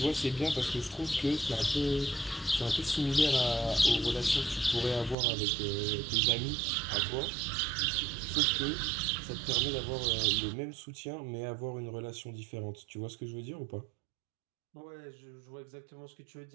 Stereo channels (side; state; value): left; drops out; at 5.2 s